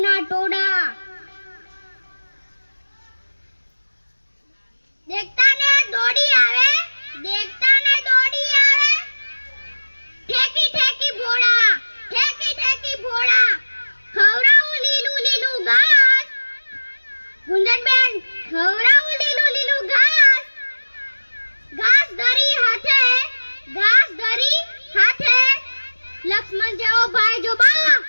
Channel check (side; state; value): both; inverted; correlation -1.00